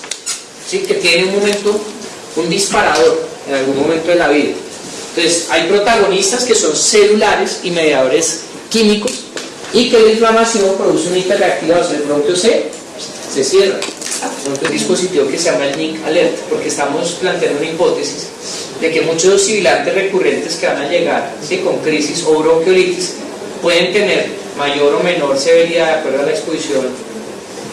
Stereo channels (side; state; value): both; identical; correlation 1.00